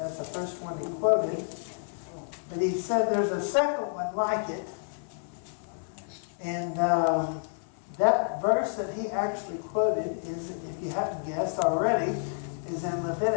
the first one he quoted, but he said there's a second one like it. And that verse that he actually quoted is, if you haven't guessed already, is in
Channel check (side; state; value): right; silent; 55 dB below the other